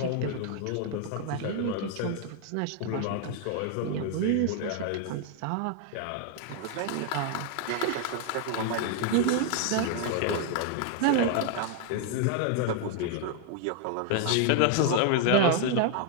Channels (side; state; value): both; different; correlation 0.00